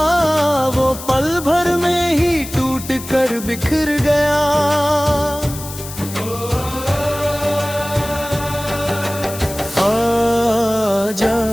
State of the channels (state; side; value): noise; left; hiss, 12 dB below the sound